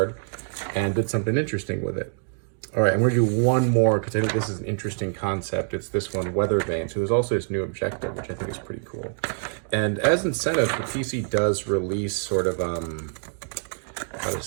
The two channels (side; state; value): left; silent; digital silence